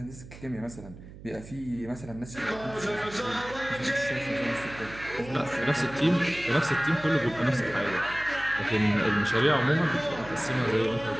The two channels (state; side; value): noise; right; hum, 16 dB below the sound